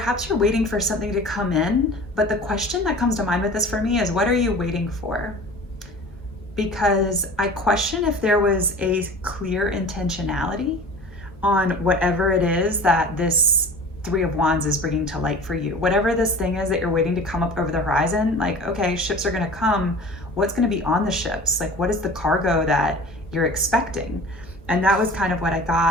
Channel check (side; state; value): both; normal; correlation 0.40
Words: you're waiting for something to come in, but the question that comes to mind with this for me is, what are you waiting for? Because I question if there was a clear intentionality on whatever it is that this Three of Wands is bringing to light for you. Whatever this thing is that you're waiting to come up over the horizon, like, okay, ships are gonna come, what's gonna be on the ships? Like, what is the cargo that you're expecting? And that was kind of what I